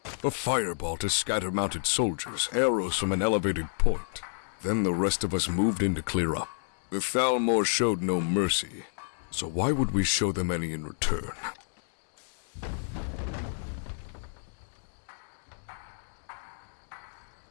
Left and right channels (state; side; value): silent; right; digital silence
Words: A fireball to scatter mounted soldiers, arrows from an elevated point. Then the rest of us moved in to clear up. The Thalmor showed no mercy, so why would we show them any in return?